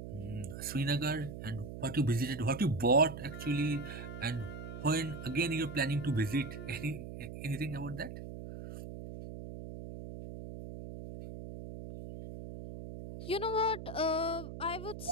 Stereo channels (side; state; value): right; noise; hum, 9 dB below the sound